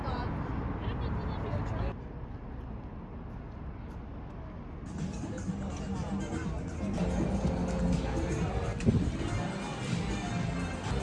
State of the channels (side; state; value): both; identical; correlation 1.00